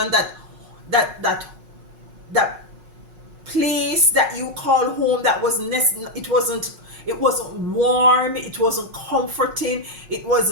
that place that you call home, that was it wasn't warm, it wasn't comforting, it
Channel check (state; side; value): late; left; 5.4 ms